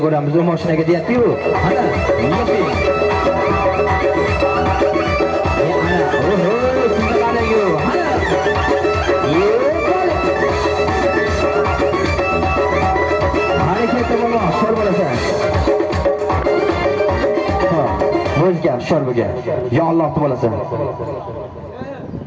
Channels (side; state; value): both; identical; correlation 1.00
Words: ko'ramiz. U mashinaga deyapti-ku. Ana, O'zgar shorbiga. Ya Alloh bo'lasan.